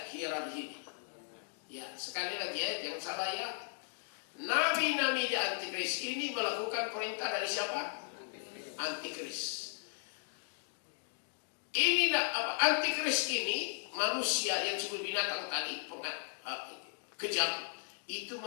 hierarki ini? Ya, sekali lagi ya, jangan salah ya. Nabi-nabi di antikris ini melakukan perintah dari siapa? Antikris. Ini apa? Antikris ini manusia yang disebut binatang tadi, kejam, itu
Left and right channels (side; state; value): right; silent; digital silence